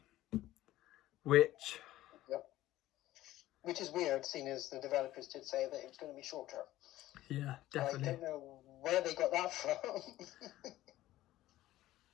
which is weird, seeing as the developers did say that it was going to be shorter. Yeah, definitely. I don't know where they got that from.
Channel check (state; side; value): quieter; right; 15.3 dB